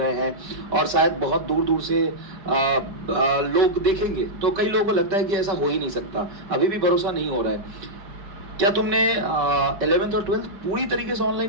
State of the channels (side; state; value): left; late; 5.1 ms